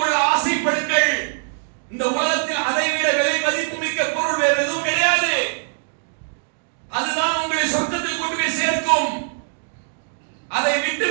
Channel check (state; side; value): silent; left; digital silence